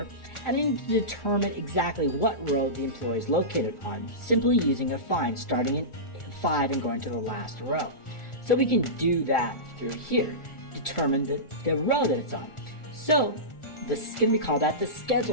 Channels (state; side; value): late; right; 1.4 ms